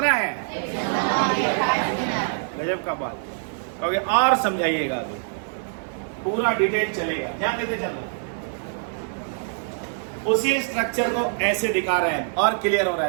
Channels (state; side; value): silent; left; digital silence